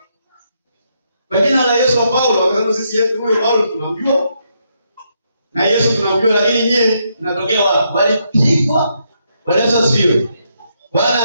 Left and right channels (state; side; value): inverted; both; correlation -0.78